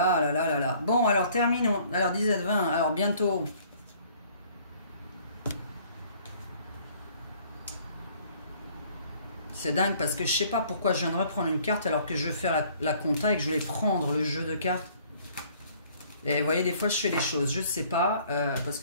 là là là là. Bon, alors terminons. Alors 17-20, alors bientôt. C'est dingue parce que je sais pas pourquoi je viens de reprendre une carte alors que je veux faire la compta et que je voulais prendre le jeu de cartes. Et vous voyez, des fois je fais des choses, je sais pas, parce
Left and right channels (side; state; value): both; inverted; correlation -0.57